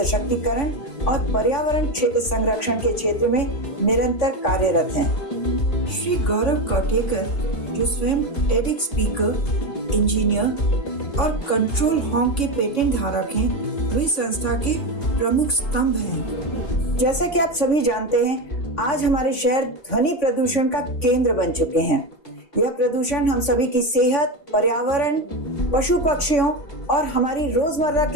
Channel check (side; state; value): right; late; 3.5 ms